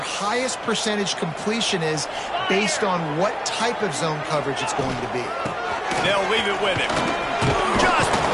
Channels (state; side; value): identical; both; correlation 1.00